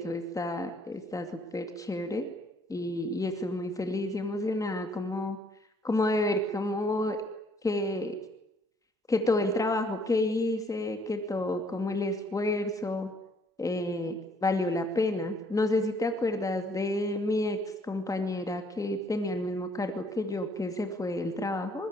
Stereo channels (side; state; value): both; normal; correlation 0.64